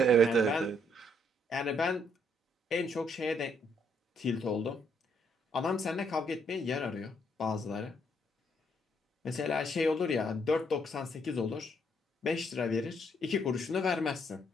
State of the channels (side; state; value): both; normal; correlation 0.71